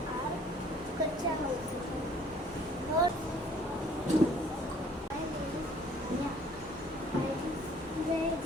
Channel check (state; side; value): normal; both; correlation 0.57